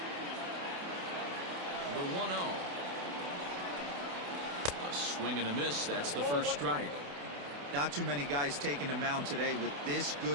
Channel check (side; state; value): left; late; 28 ms